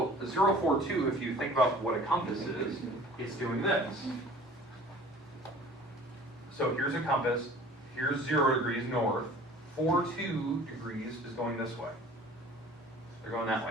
a 042, if you think about what a compass is, it's doing this. So here's a compass, here's 0 degrees north, 42 degrees is going this way. They're going that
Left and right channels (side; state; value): both; normal; correlation 0.47